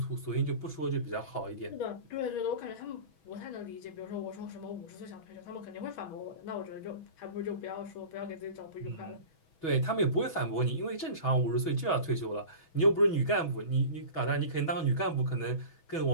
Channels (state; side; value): late; right; 6.1 ms